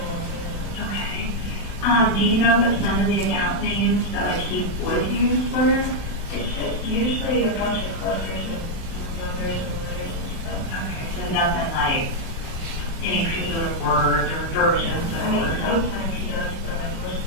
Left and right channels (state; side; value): late; right; 36 ms